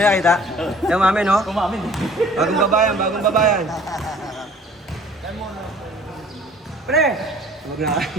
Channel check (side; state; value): both; normal; correlation 0.52